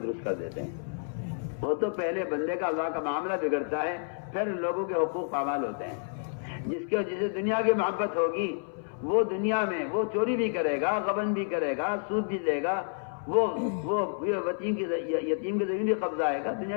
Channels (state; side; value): silent; right; 58 dB below the other